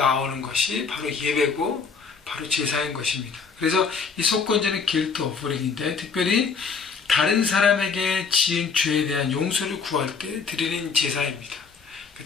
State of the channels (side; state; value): right; quieter; 5.4 dB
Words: 것이 바로 예배고 바로 제사인 것입니다. 그래서 이 속건제는 guilt offering인데 특별히 다른 사람에게 지은 죄에 대한 용서를 구할 때 드리는 제사입니다.